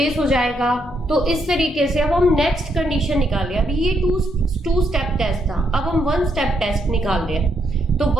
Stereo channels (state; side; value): normal; both; correlation 0.77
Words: हो जाएगा। तो इस तरीके से अब हम नेक्स्ट कंडीशन निकाल रहे हैं। अभी ये टू स्टेप टेस्ट था, अब हम वन स्टेप टेस्ट निकाल रहे हैं। तो